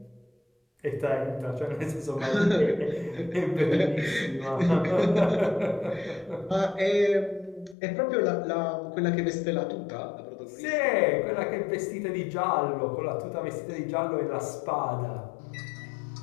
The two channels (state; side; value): drops out; right; at 7.8 s